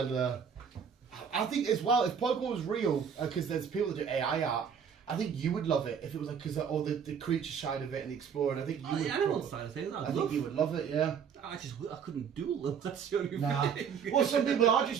I think as well, if Pokemon was real, because there's people that do AI art, I think you would love it if it was like because all the creature side of it and the exploring. I think you would. The animal side of things. I think you would love it. Yeah. I couldn't do them. That's the only thing. Well, some people are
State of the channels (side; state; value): left; quieter; 7.1 dB